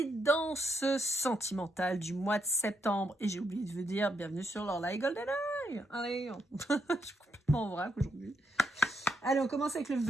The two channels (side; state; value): both; normal; correlation 0.79